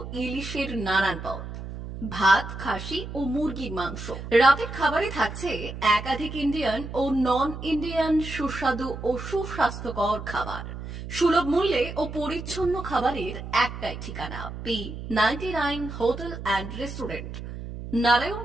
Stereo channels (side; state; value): right; noise; hum, 9 dB below the sound